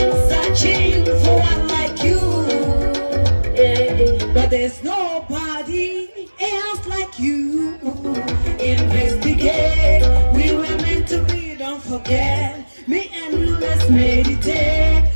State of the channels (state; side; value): inverted; both; correlation -1.00